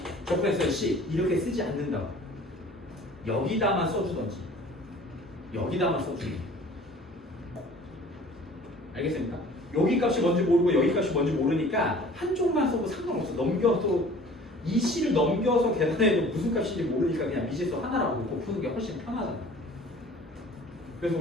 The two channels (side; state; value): both; normal; correlation 0.48